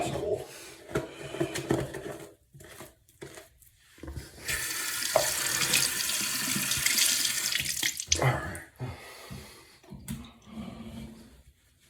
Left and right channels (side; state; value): both; identical; correlation 1.00